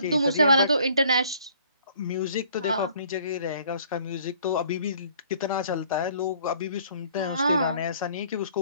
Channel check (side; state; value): both; inverted; correlation -0.58